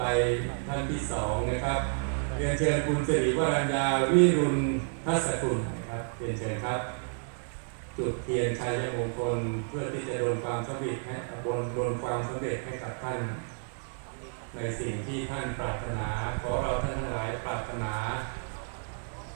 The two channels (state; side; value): silent; left; 57 dB below the other